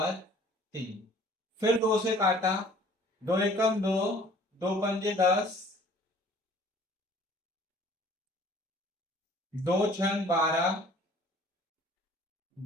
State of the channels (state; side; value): normal; both; correlation 0.52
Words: 3। फिर 2 से काटा, 2 एकम 2, 2 पंजे 10, 2 छंग 12,